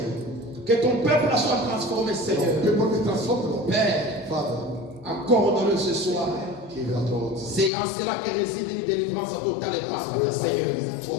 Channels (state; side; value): drops out; right; at 7.7 s